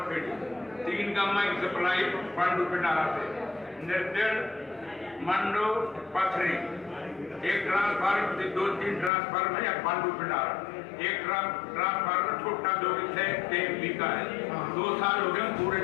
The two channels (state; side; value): drops out; right; at 9.1 s